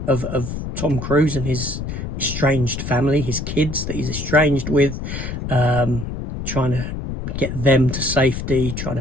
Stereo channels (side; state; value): left; noise; rumble, 5 dB below the sound